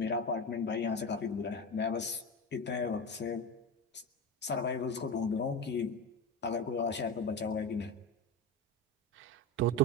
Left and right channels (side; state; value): both; normal; correlation 0.22